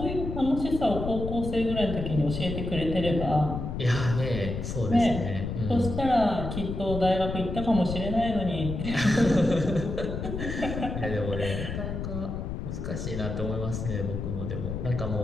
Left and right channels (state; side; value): noise; left; rumble, 5 dB below the sound